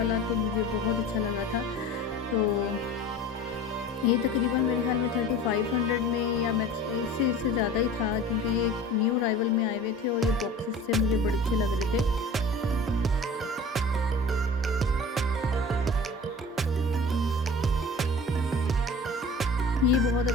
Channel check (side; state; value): both; normal; correlation 0.40